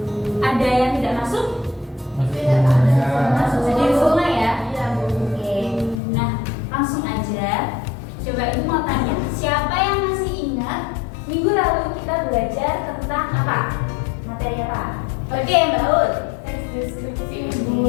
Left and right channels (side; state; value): right; drops out; at 6.0 s